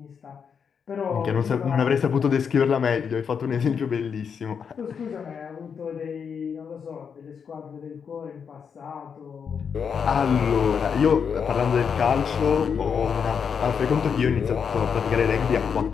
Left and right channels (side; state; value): right; quieter; 6.7 dB